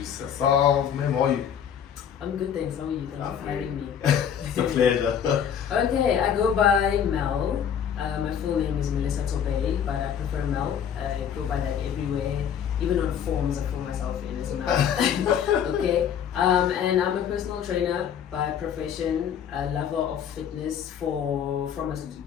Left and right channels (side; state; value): right; quieter; 8.5 dB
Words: herself. Ma'am, how are you? I'm good, thanks. How are you? Thanks for having me. It's a pleasure. Okay, I go by Mel. My full name is Melissa Tobey, but I prefer Mel. I go by that everywhere. Even on forms, I call myself in as Mel. Okay, and I'm a personal trainer by profession, a lover of fitness from as